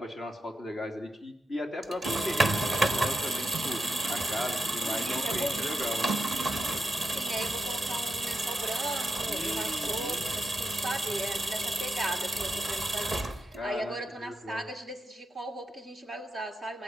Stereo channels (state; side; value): normal; both; correlation 0.86